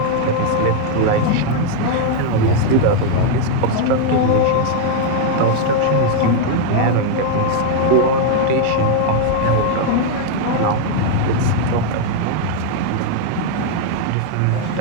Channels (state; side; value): different; both; correlation 0.00